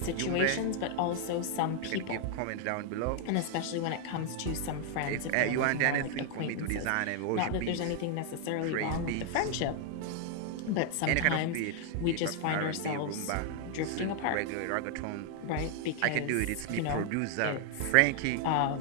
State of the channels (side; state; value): both; different; correlation 0.00